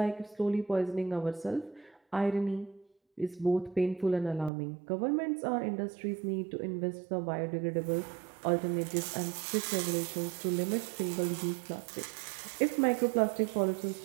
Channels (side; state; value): left; drops out; at 4.5 s